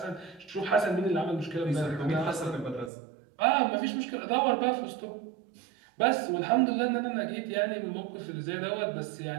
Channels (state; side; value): drops out; left; at 2.9 s